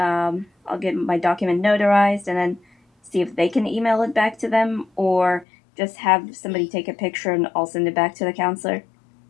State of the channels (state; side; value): drops out; right; at 5.5 s